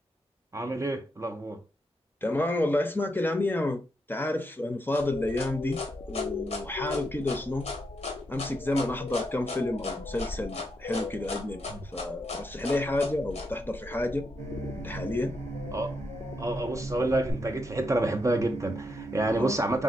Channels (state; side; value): normal; both; correlation 0.81